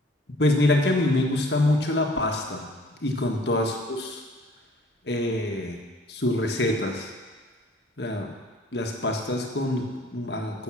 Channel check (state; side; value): normal; both; correlation 0.55